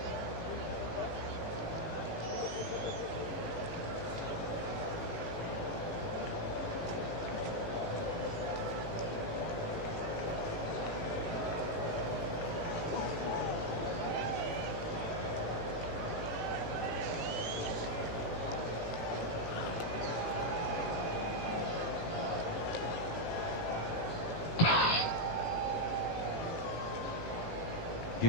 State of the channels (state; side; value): late; right; 18 ms